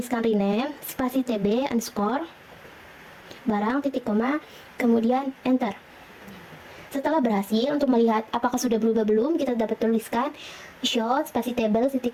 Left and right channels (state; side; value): identical; both; correlation 1.00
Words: rename spasi TB underscore barang titik koma, kemudian enter. Setelah berhasil, untuk melihat apakah sudah berubah belum, kita dapat tuliskan show spasi table titik